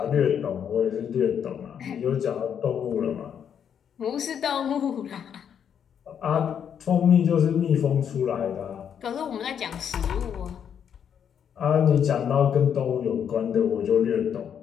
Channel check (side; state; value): right; quieter; 8.3 dB